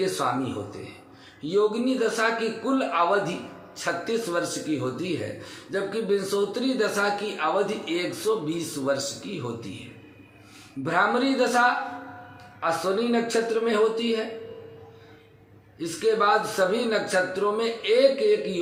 स्वामी होते हैं। योगिनी दशा की कुल अवधि 36 वर्ष की होती है, जबकि विंशोत्तरी दशा की अवधि 120 वर्ष की होती है। भ्रामरी दशा अश्विनी नक्षत्र में होती है। इसके बाद सभी नक्षत्रों में एक एक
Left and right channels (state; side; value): identical; both; correlation 1.00